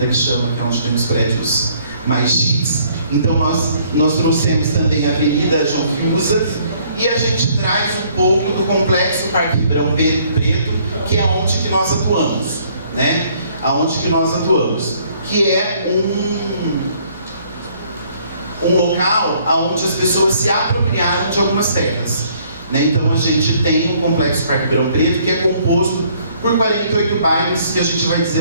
que chama, que é onde temos prédios mais chiques. Então nós trouxemos também a Avenida João Fiuza, e a gente traz um pouco do Complexo Parque Ribeirão Preto, que é onde que nós atuamos, né? Aonde que nós atuamos, que é um local onde as pessoas se apropriaram de algumas terras, né? Então a gente tem um Complexo Parque Ribeirão Preto que é composto por 48 bairros, que a gente vai dizer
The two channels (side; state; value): both; inverted; correlation -0.63